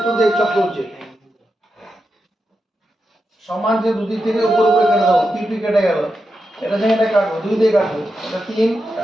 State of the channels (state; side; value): normal; both; correlation 0.87